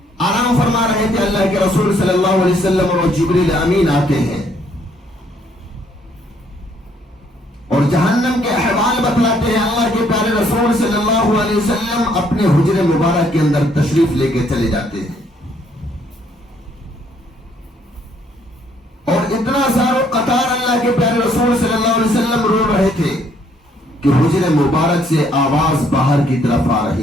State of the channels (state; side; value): normal; both; correlation 0.67